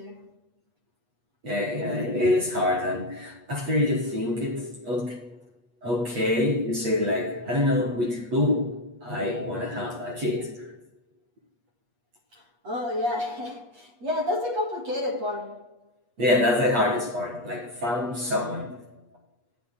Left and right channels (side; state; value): left; late; 8.3 ms